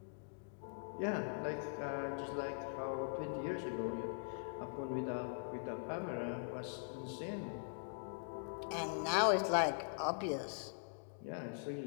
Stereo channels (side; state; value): right; silent; digital silence